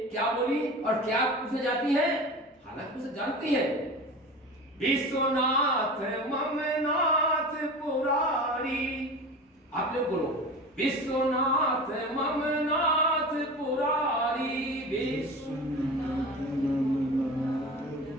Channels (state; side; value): normal; both; correlation 0.33